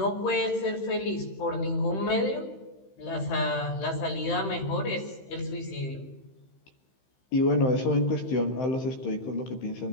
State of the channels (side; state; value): right; late; 15 ms